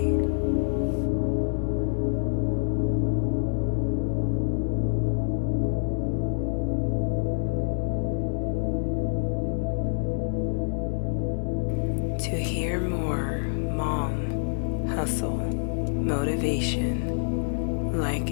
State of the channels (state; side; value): silent; right; 60 dB below the other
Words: To hear more Mom Hustle motivation, like